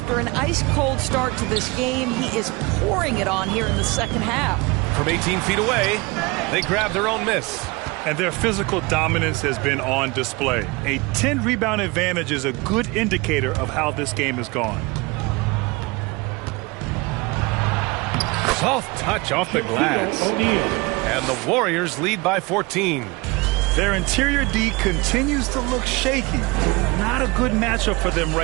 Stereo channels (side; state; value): left; quieter; 24.9 dB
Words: an ice-cold start to this game, he is pouring it on here in the second half. From 18 feet away, they grab their own miss. And their physical dominance has been on display. A 10-rebound advantage is a good indicator of how this game has gone. Soft touch off the glass. And the Warriors lead by 14. Their interior D continues to look shaky. Not a good matchup for them